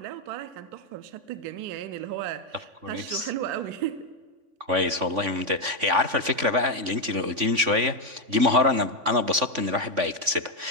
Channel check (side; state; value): left; late; 3.5 ms